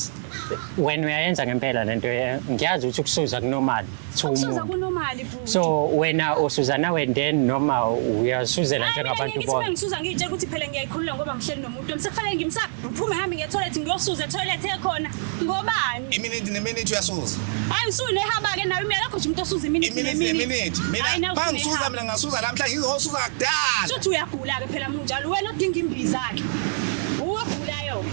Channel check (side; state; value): left; silent; digital silence